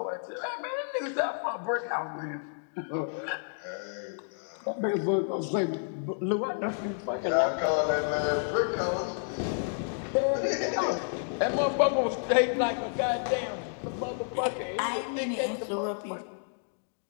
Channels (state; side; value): silent; right; digital silence